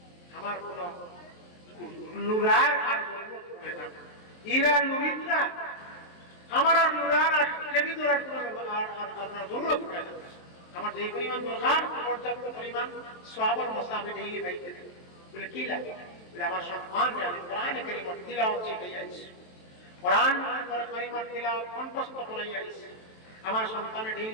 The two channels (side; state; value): right; late; 23 ms